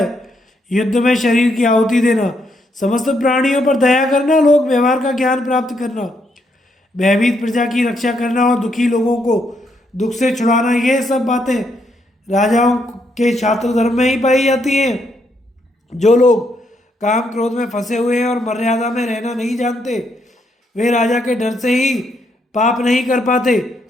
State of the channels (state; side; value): normal; both; correlation 0.76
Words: युद्ध में शरीर की आहुति देना, समस्त प्राणियों पर दया करना, लोक व्यवहार का ज्ञान प्राप्त करना, भयभीत प्रजा की रक्षा करना और दुखी लोगों को दुख से छुड़ाना, ये सब बातें राजाओं के छात्र धर्म में ही पाई जाती हैं। जो लोग काम क्रोध में फंसे हुए हैं और मर्यादा में रहना नहीं जानते, वे राजा के डर से ही पाप नहीं कर पाते,